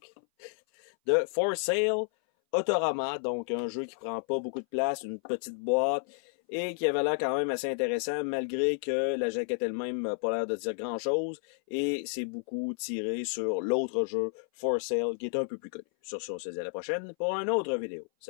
de For Sale Autorama. Donc, un jeu qui prend pas beaucoup de place, une petite boîte, et qui avait l'air quand même assez intéressant, malgré que la jaquette elle-même n'a pas l'air de dire grand-chose, et c'est beaucoup tiré sur l'autre jeu, For Sale, qui est un peu plus connu. Sur ce, on se dit à la prochaine pour une autre vidéo.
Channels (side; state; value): right; silent; 57 dB below the other